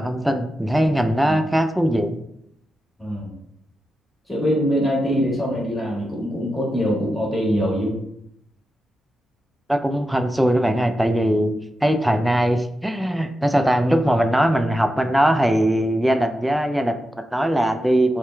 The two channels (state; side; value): normal; both; correlation 0.89